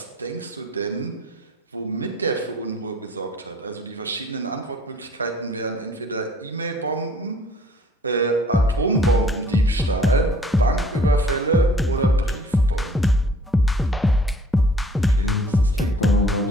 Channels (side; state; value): both; normal; correlation 0.56